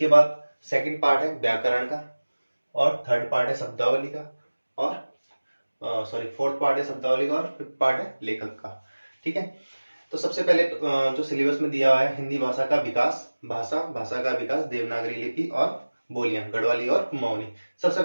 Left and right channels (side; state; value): both; inverted; correlation -1.00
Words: बाद सेकंड पार्ट है व्याकरण का, और थर्ड पार्ट है शब्दावली का, और फोर्थ पार्ट है शब्दावली का, और फिफ्थ पार्ट है लेखक का। ठीक है, तो सबसे पहले जो सिलेबस में दिया हुआ है हिंदी भाषा का विकास, भाषा का विकास, देवनागरी लिपि और बोलियां, गढ़वाली और कुमाऊनी, सबसे